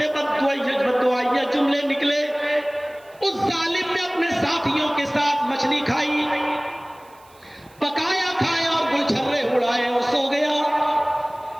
بددعائیہ جملے نکلے۔ اس ظالم نے اپنے ساتھیوں کے ساتھ مچھلی کھائی، پکایا کھایا اور گلچھرے اڑائے اور سو گیا۔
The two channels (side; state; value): right; noise; hiss, 29 dB below the sound